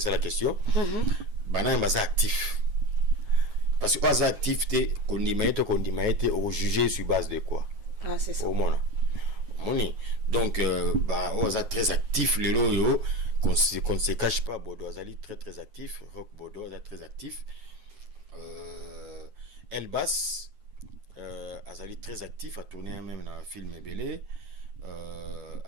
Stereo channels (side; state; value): left; late; 9.5 ms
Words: ça la question. Bana est actif. Parce que as activité qu'on dit au juger sur base de quoi? Ah c'est ça. Au moins. Donc, on est très actif, le loyo, qu'on ne se cache pas. Bordeaux Azali très très actif, Rock Bordeaux est très actif. Elbas Azali très actif, a tourné même dans un film Belé.